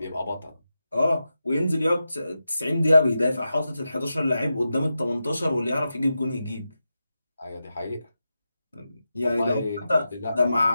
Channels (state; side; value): inverted; both; correlation -0.90